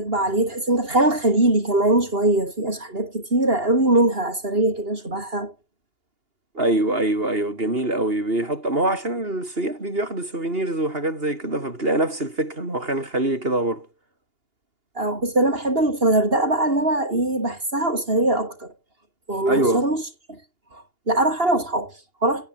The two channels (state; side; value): late; left; 2.8 ms